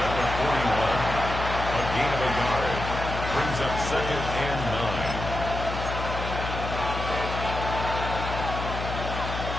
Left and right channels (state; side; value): noise; left; hum, 5 dB below the sound